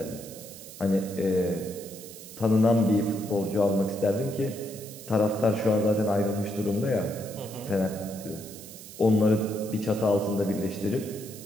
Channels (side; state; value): right; noise; hiss, 15 dB below the sound